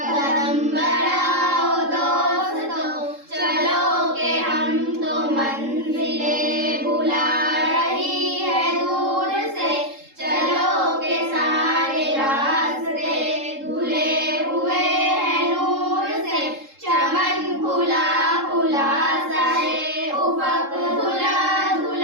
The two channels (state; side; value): late; left; 3.7 ms